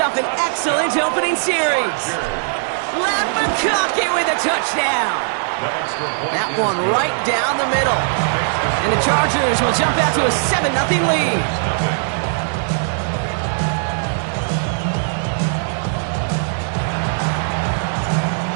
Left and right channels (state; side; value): silent; left; digital silence